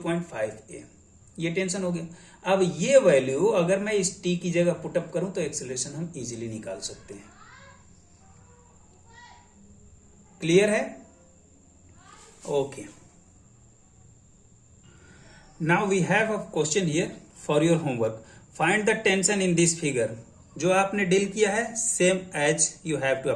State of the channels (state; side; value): identical; both; correlation 1.00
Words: ये टेंशन हो गया। अब ये वैल्यू अगर मैं इस t की जगह पुटअप करूं तो एक्सेलरेशन हम इजीली निकाल सकते हैं। क्लियर है? Okay, now we have a question here for your homework. Find the tension in this figure. जो आपने डील किया है same as you have to